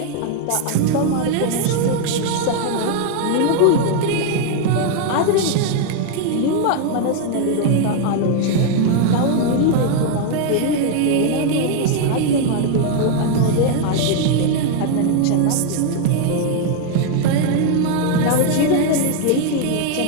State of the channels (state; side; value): different; both; correlation 0.00